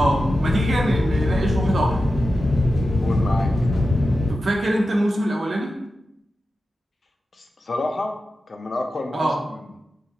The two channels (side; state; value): both; normal; correlation 0.92